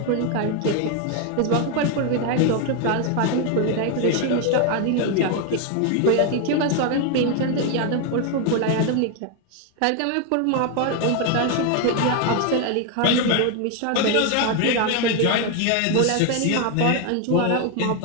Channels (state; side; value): different; both; correlation 0.01